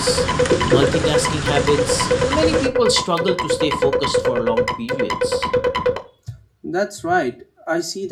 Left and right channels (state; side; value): identical; both; correlation 1.00